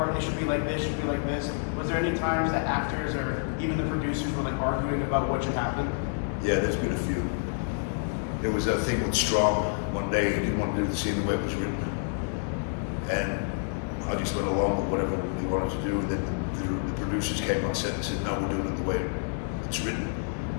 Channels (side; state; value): right; silent; digital silence